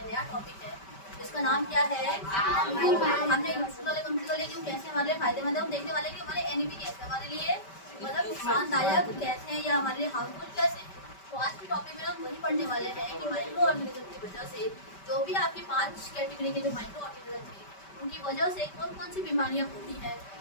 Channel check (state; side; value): late; right; 5.2 ms